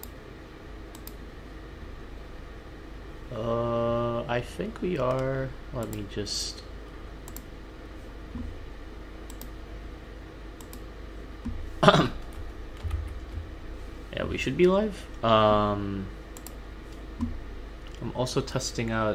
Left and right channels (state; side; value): identical; both; correlation 1.00